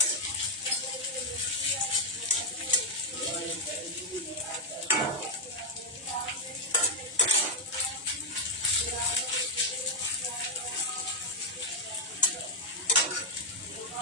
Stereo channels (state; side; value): normal; both; correlation -0.01